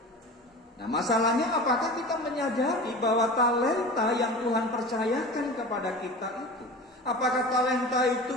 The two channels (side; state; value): both; normal; correlation 0.34